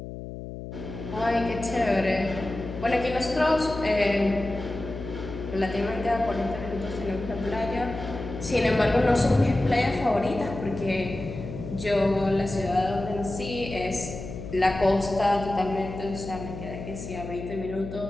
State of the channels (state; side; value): noise; left; hum, 10 dB below the sound